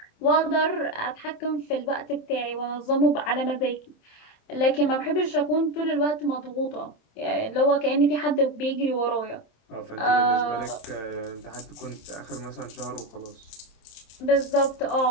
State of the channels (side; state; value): right; late; 27 ms